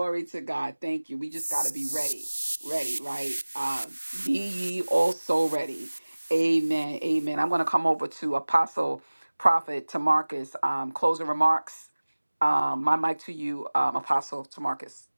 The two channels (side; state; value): both; inverted; correlation -1.00